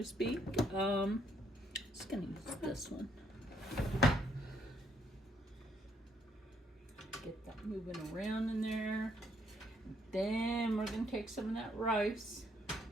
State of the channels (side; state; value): both; normal; correlation 0.71